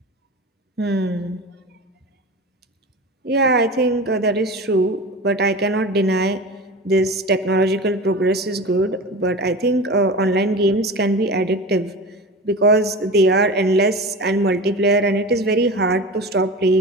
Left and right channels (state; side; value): normal; both; correlation 0.31